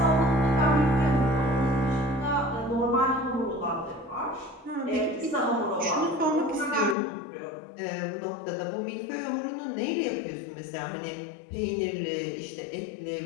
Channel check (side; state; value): right; drops out; at 7.0 s